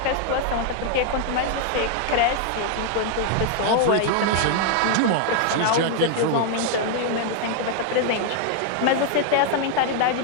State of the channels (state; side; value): different; both; correlation 0.00